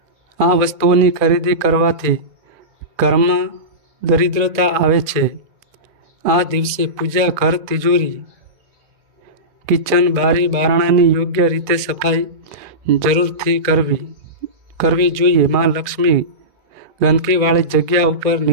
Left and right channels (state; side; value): late; left; 2.4 ms